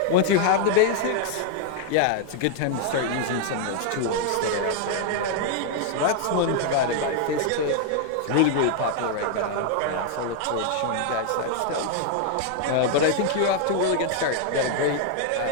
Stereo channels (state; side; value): different; both; correlation 0.00